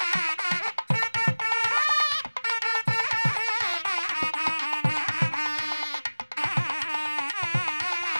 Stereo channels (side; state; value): both; inverted; correlation -1.00